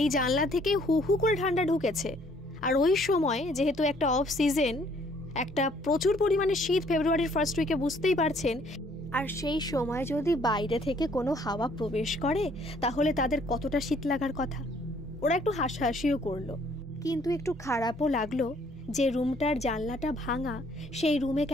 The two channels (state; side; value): normal; both; correlation 0.62